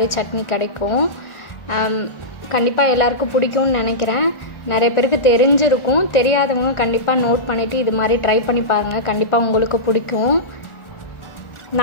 சட்னி கிடைக்கும். கண்டிப்பாக எல்லாருக்கும் பிடிக்கும்னு நினைக்கிறேன். நிறைய பேருக்கு தெரிஞ்சிருக்கும், தெரியாதவங்க கண்டிப்பாக நோட் பண்ணிவிட்டு இது மாதிரி ட்ரை பண்ணி பாருங்கள். கண்டிப்பாக உங்களுக்கு பிடிக்கும்.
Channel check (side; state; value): right; late; 1.4 ms